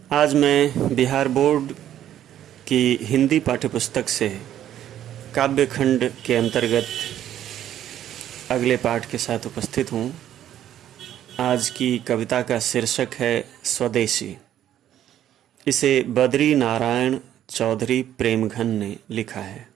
आज मैं बिहार बोर्ड की हिंदी पाठ्यपुस्तक से काव्य खंड के अंतर्गत अगले पाठ के साथ उपस्थित हूँ। आज की कविता का शीर्षक है स्वदेशी। इसे बद्री नारायण चौधरी प्रेमघन ने लिखा है।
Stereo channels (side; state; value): left; quieter; 11.3 dB